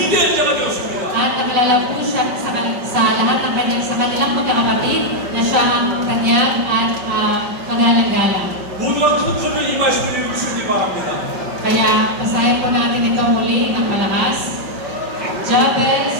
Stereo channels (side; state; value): left; late; 5.3 ms